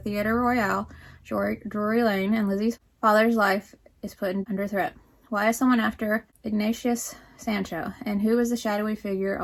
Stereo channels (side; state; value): both; identical; correlation 1.00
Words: Royal, Drury Lane, and Lizzie's father's life is put under threat. Why is someone after Ignatius Sancho, and who is the shadowy figure